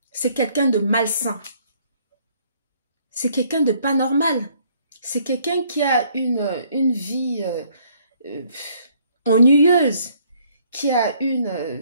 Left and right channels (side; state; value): both; inverted; correlation -0.64